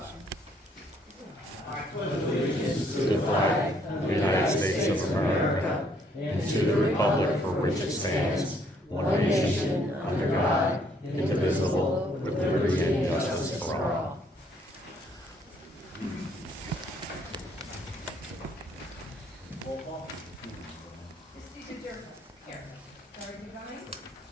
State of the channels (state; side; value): normal; both; correlation 0.67